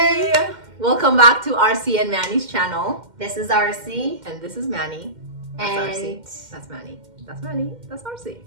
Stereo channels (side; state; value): left; late; 2.1 ms